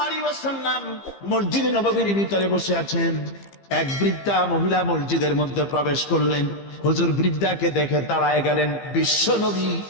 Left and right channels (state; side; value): late; right; 15 ms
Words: আলাইহি ওয়াসাল্লাম মসজিদে নববীর ভিতরে বসে আছেন। এক বৃদ্ধা মহিলা মসজিদের মধ্যে প্রবেশ করলেন। হুজুর বৃদ্ধাকে দেখে দাঁড়ায় গেলেন, বিশ্ব নবী